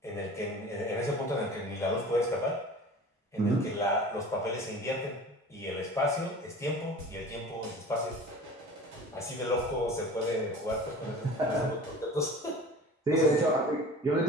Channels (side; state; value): both; normal; correlation 0.40